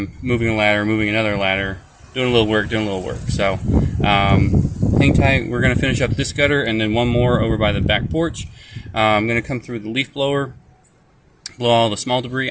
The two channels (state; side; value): identical; both; correlation 1.00